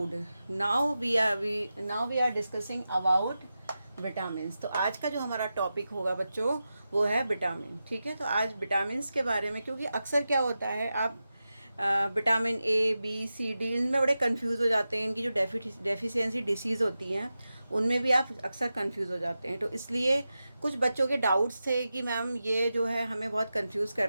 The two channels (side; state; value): both; inverted; correlation -0.92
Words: Now we are discussing about vitamins. तो आज का जो हमारा topic होगा बच्चों वो है vitamin. ठीक है, तो आज विटामिन्स के बारे में, क्योंकि अक्सर क्या होता है आप vitamin A B C D इनमें बड़े कंफ्यूज हो जाते हैं। इनकी जो डेफिशिएंसी डिसीज़ होती हैं उनमें भी आप अक्सर कंफ्यूज हो जाते हैं। तो इसलिए कुछ बच्चों के डाउट्स थे कि मैम ये जो है हमें बहुत कंफ्यूज कर